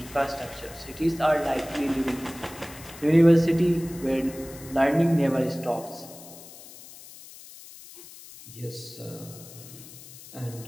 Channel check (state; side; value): noise; left; hiss, 17 dB below the sound